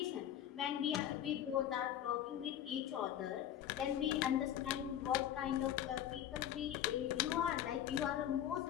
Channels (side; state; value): right; quieter; 10.8 dB